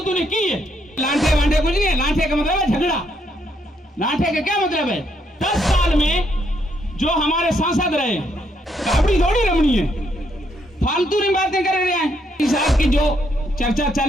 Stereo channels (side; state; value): both; normal; correlation 0.74